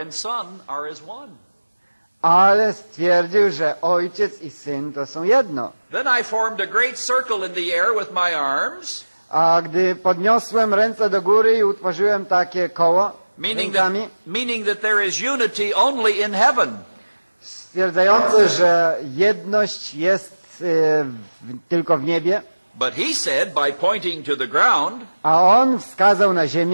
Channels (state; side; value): inverted; both; correlation -1.00